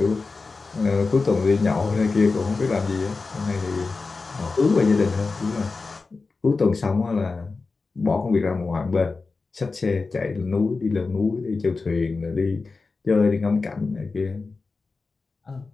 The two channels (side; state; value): right; quieter; 4.1 dB